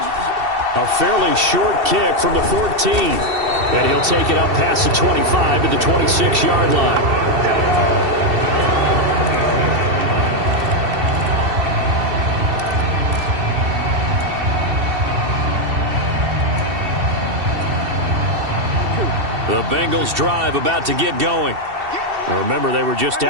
A fairly short kick from the 14. And he'll take it up past the 25 to the 26-yard line. The Bengals drive about to get going. Now remember, they were just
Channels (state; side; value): late; left; 2.7 ms